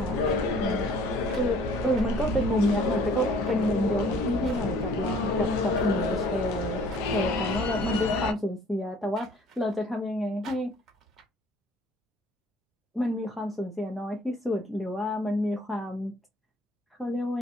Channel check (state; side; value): normal; both; correlation 0.54